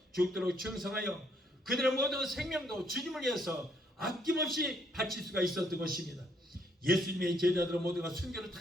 죽도록 충성하여 그들의 모든 생명도 주님을 위해서 아낌없이 바칠 수가 있었던 것입니다. 예수님의 제자들은 모두가 순교를 다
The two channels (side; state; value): both; normal; correlation 0.69